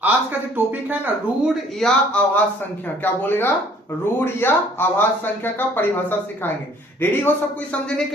आज का जो टॉपिक है ना, रूढ़ या आभास संख्या। क्या बोलेगा? रूढ़ या आभास संख्या का परिभाषा सिखाएंगे। रेडी हो सब कोई समझने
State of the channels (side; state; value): both; normal; correlation 0.57